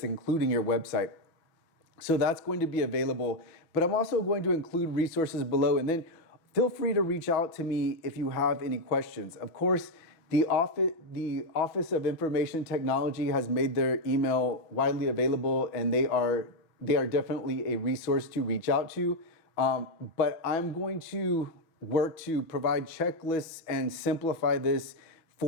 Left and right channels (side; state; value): right; late; 6.0 ms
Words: including your website. So that's going to be available, but I'm also going to include resources below, and then feel free to reach out to me if you have any questions. Of course, the Office of Information Technology has made their email widely available, and they are definitely a resource to reach out to. But I'm going to work to provide checklists and simplify this